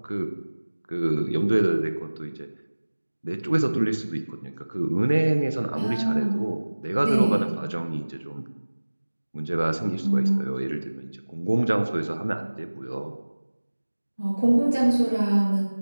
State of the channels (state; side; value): inverted; both; correlation -1.00